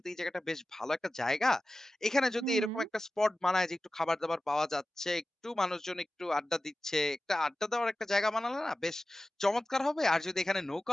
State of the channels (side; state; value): both; normal; correlation 0.95